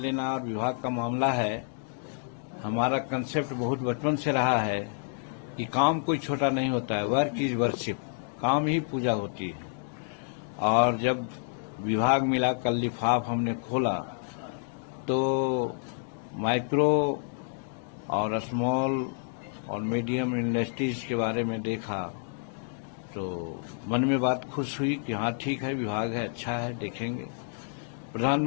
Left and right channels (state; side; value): silent; right; 58 dB below the other